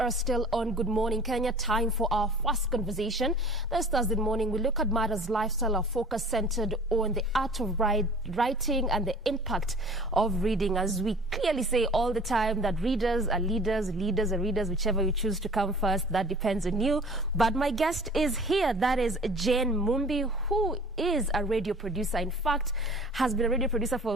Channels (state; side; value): normal; both; correlation 0.46